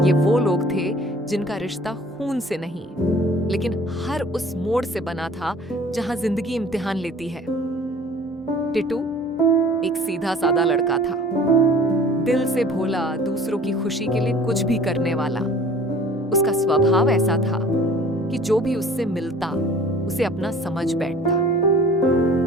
ये वो लोग थे जिनका रिश्ता खून से नहीं, लेकिन हर उस मोड़ से बना था जहां जिंदगी इम्तिहान लेती है। टिटू एक सीधा सादा लड़का था, दिल से भोला, दूसरों की खुशी के लिए कुछ भी करने वाला। उसका स्वभाव ऐसा था कि जो भी उससे मिलता उसे अपना समझ बैठता।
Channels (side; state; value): both; normal; correlation 0.48